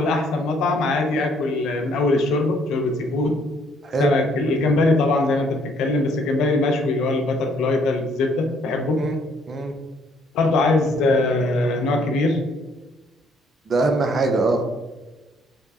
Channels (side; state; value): both; normal; correlation 0.65